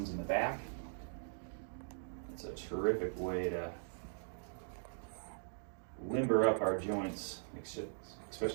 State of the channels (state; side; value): silent; left; digital silence